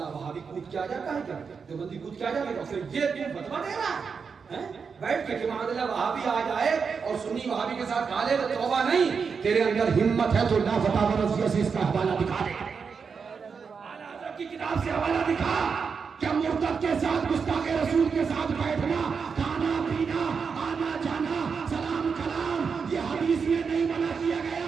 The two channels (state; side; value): quieter; left; 5.7 dB